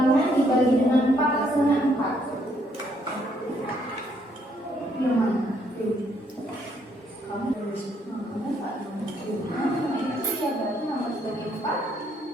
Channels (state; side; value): normal; both; correlation 0.70